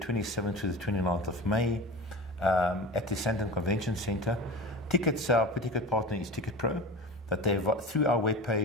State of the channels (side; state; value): both; normal; correlation 0.32